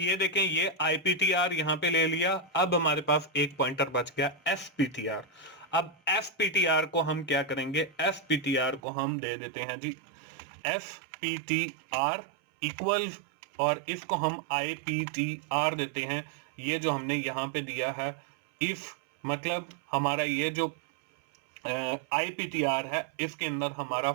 देखें ये IPTR यहाँ पे ले लिया। अब हमारे पास एक पॉइंटर बच गया SPTR। अब SPTR को हम क्या करेंगे, SPTR को हम दे देते हैं जी SPTR इक्वल्स और इसको हम IPTR देते हैं। ये जो हमने यहाँ पे दिया है इफ, मतलब हमारा ये जो IPTR है इसके अंदर हमारा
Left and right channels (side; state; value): left; drops out; at 8.8 s